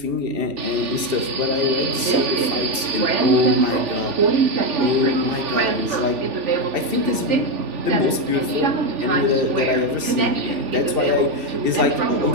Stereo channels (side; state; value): left; late; 2.7 ms